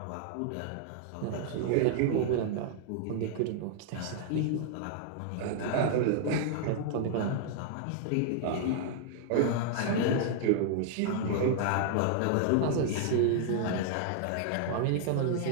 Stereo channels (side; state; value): both; different; correlation -0.01